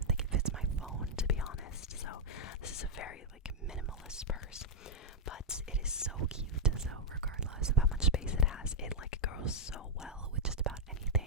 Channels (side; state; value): both; normal; correlation -0.03